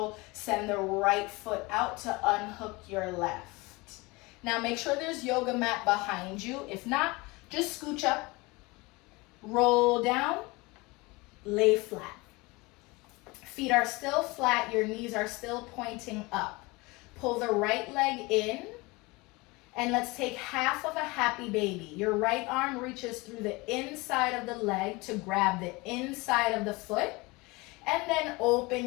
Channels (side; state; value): right; quieter; 24.2 dB